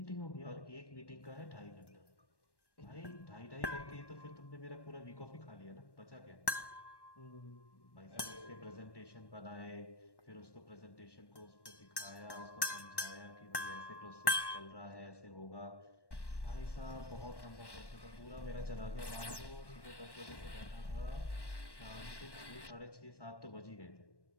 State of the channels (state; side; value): late; right; 1.1 ms